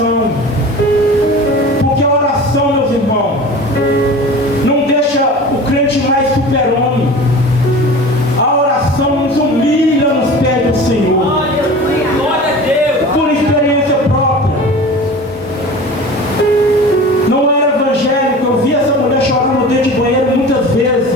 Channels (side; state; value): both; normal; correlation 0.37